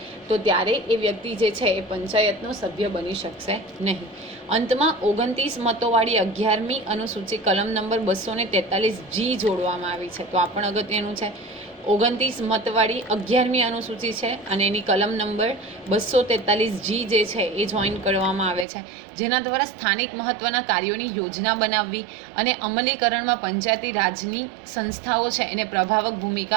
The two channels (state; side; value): drops out; left; at 18.7 s